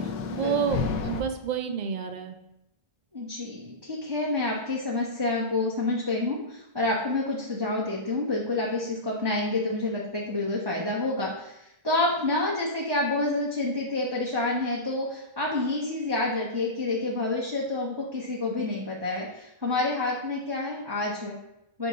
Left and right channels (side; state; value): left; late; 2.0 ms